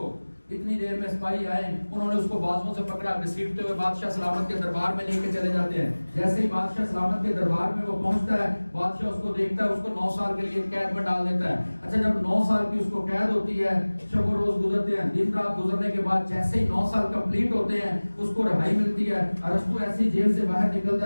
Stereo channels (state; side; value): inverted; both; correlation -1.00